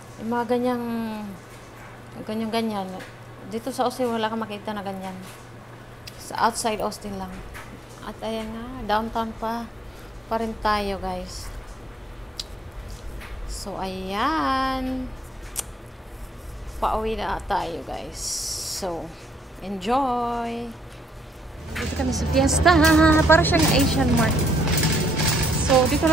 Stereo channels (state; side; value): normal; both; correlation 0.71